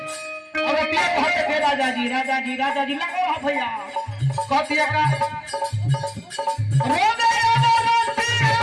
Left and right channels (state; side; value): identical; both; correlation 1.00